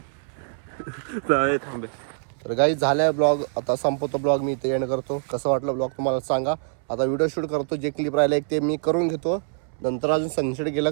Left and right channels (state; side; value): silent; left; 62 dB below the other